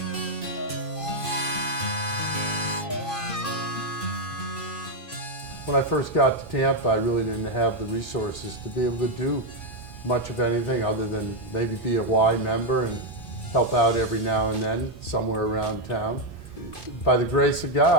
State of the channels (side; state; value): right; late; 2.5 ms